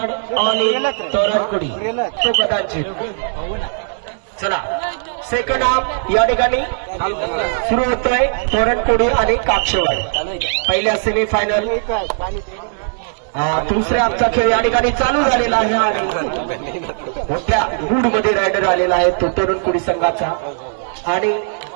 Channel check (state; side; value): silent; left; digital silence